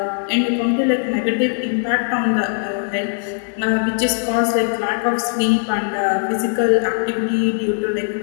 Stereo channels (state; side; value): silent; right; digital silence